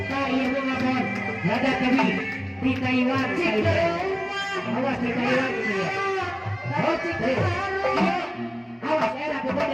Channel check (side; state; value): both; identical; correlation 1.00